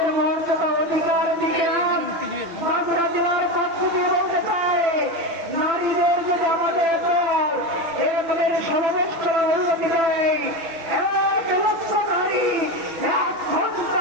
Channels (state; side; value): late; left; 6.0 ms